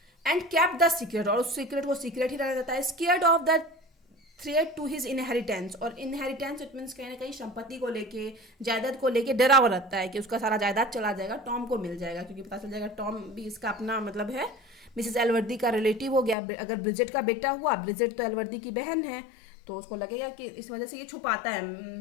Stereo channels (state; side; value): drops out; right; at 16.4 s